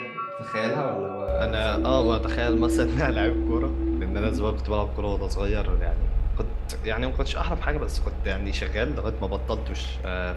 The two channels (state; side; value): identical; both; correlation 1.00